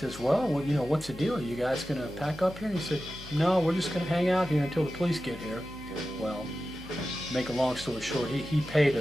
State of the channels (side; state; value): left; noise; hum, 17 dB below the sound